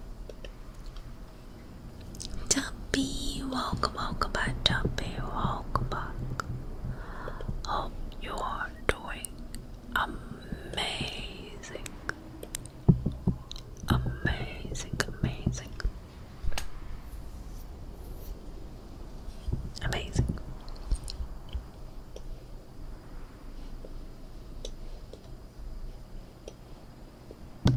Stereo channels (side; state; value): both; identical; correlation 1.00